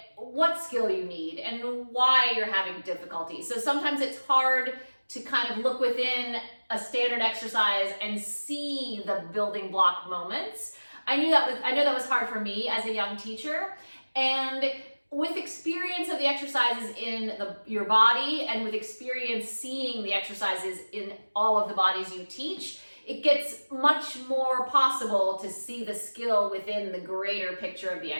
skill you need and why you're having difficulty. So sometimes it's hard to kind of look within a standard exercise and see the building block moments. I know that was hard for me as a young teacher, and with experience of the exercises in your body and with experience seeing the exercises in all of the bodies you teach, it gets much more possible to see the skill within the greater picture of the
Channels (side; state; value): both; inverted; correlation -1.00